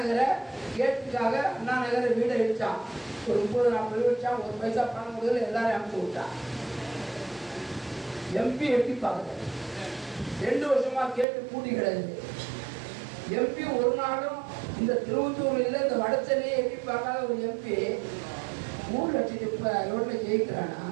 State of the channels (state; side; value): drops out; left; at 11.2 s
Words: கேட்டுக்காக அண்ணா நகரை வீடை இடிச்சான். ஒரு 30-40 வச்சான். 1 பைசா பணம் கொடுக்கல, எல்லாரும் அனுப்பிச்சு விட்டான். எம்பி எட்டி பார்க்கல. 2 வருஷமா கேட்டு கூட்டி கிடையாது. எம்பி ஒரு நாளும் இந்த திருவத்தூர்ல இல்லை, இந்த வடச்சென்னையை எட்டி பார்க்காத ஒரு எம்பி 3 லட்சம் ரோட்ல ஜெயிக்கிறானா?